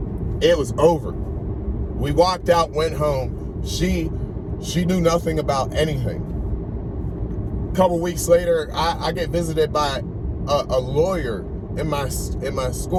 It was over. We walked out, went home. She knew nothing about anything. A couple weeks later, I get visited by a lawyer in my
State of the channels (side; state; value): both; identical; correlation 1.00